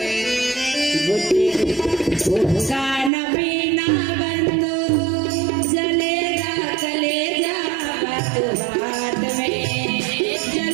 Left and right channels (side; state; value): left; drops out; at 3.1 s